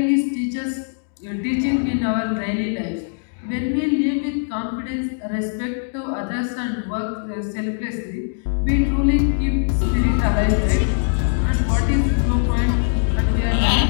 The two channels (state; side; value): silent; right; digital silence